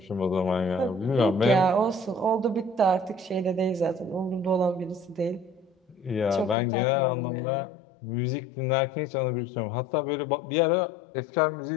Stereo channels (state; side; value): drops out; right; at 6.6 s